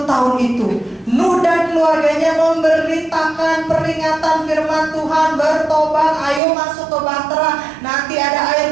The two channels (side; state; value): left; drops out; at 6.4 s